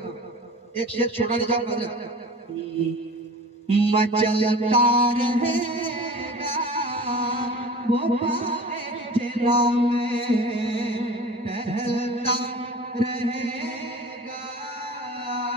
एक शेर छोटा नहीं जाऊंगा। मचलता रहेगा वो जिला में, टहलता रहेगा,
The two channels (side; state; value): both; normal; correlation 0.39